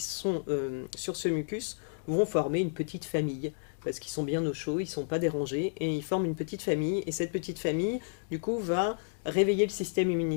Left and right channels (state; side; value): silent; right; digital silence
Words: sur ce mucus vont former une petite famille. Parce qu'ils sont bien au chaud, ils ne sont pas dérangés, et ils forment une petite famille. Et cette petite famille, du coup, va réveiller le système